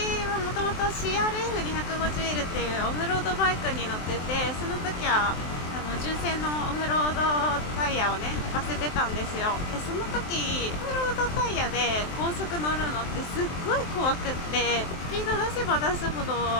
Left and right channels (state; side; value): late; right; 23 ms